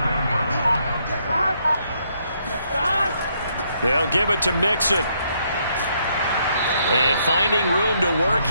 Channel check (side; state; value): both; inverted; correlation -0.73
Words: They'll give it to Mixon. And finding room to work,